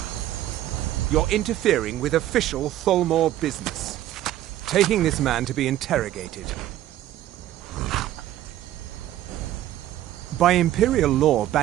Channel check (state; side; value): quieter; left; 13.3 dB